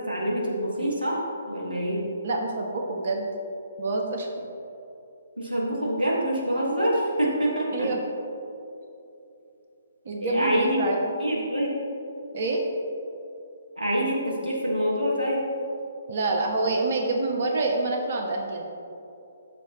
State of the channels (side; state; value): both; inverted; correlation -0.70